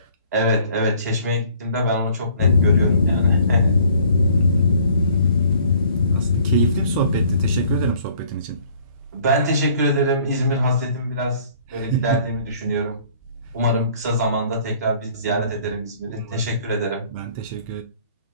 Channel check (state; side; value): inverted; both; correlation -0.57